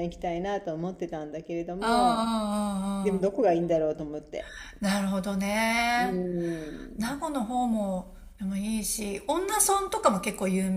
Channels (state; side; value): identical; both; correlation 1.00